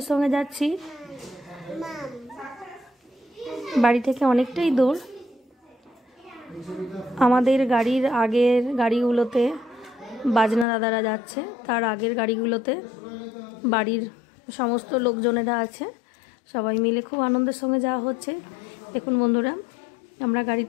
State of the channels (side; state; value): right; drops out; at 10.7 s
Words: সঙ্গে যাচ্ছি। বাড়ি থেকে অনেকটাই দূর। আমাদের গাড়ির আগের গাড়িগুলোতে বাজনা দাদারা যাচ্ছে, তার আগের গাড়িগুলোতে বাড়ির সমস্ত লোকজনেরা আছে, সবাই মিলে খুব আনন্দের সঙ্গে যাওয়া হচ্ছে। দেখুন বন্ধুরা, আমরা